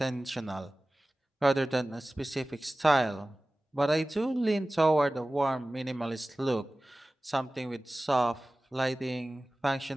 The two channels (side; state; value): both; normal; correlation 0.97